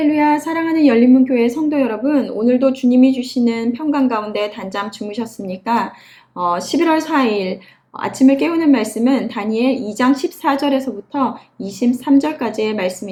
사랑하는 열린문교회 성도 여러분, 오늘도 주님이 주시는 평강 가운데 단잠 주무셨습니까? 11월 4일 아침을 깨우는 말씀은 다니엘 2장 14절에서부터 23절까지의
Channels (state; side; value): identical; both; correlation 1.00